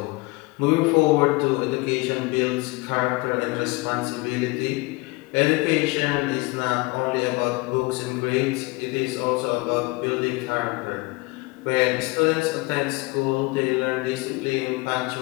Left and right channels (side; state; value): right; quieter; 24.4 dB